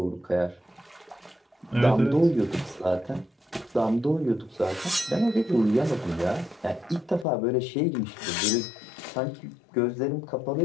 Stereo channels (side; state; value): right; drops out; at 7.2 s